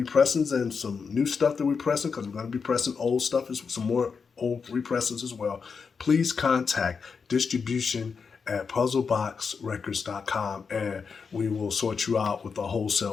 and some new stuff that we're pressing, because we're going to be pressing old stuff, some more old repressings as well. Please contact distribution at puzzleboxrecords.com and we will sort you out with a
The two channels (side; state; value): right; quieter; 5.6 dB